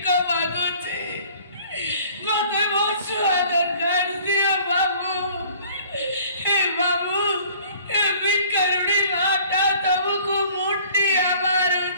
ମାଗୁଛି, ମତେ ମୋ ଛୁଆ ଦରକାର, ଦିଅ ବାବୁ। ଏ ବାବୁ, ଏ ଭିକାରୁଣୀ ମାଟା ତମକୁ ମୁଣ୍ଡିଆ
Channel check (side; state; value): both; inverted; correlation -0.52